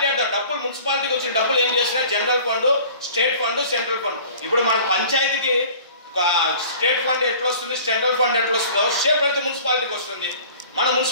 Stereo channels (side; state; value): both; inverted; correlation -0.46